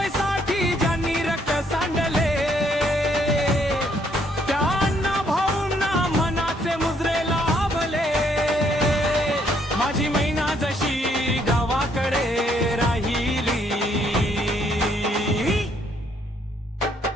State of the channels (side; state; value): both; normal; correlation 0.69